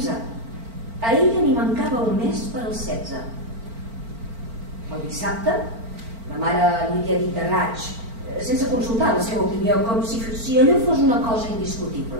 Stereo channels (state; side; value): late; left; 4.4 ms